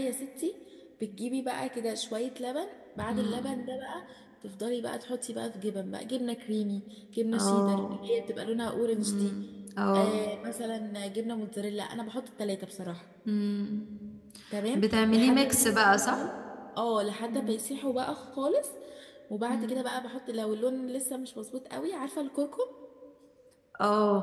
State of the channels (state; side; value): identical; both; correlation 1.00